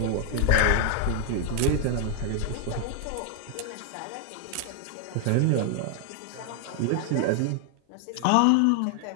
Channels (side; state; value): both; different; correlation 0.00